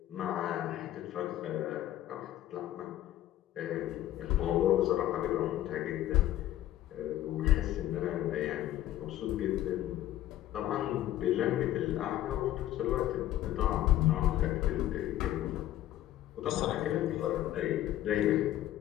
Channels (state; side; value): quieter; right; 13.4 dB